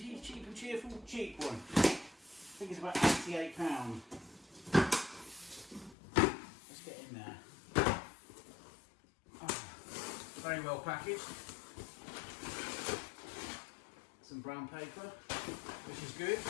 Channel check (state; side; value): drops out; right; at 6.0 s